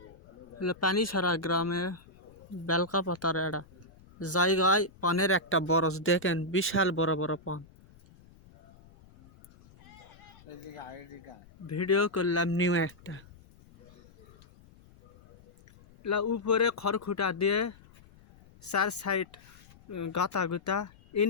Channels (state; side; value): noise; left; rumble, 25 dB below the sound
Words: পানি ছাড়া গ্রামে বেলকা পাতার এটা জায়গায় পানের একটা বরজ দেখেন, বিশাল বড় বড় পান। ভিডিও করলাম নিউ একটা উপরে খড়খুটা দিয়ে চার সাইড গাতা গুতা।